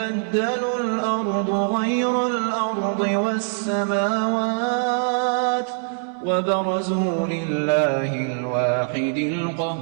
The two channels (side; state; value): left; silent; 59 dB below the other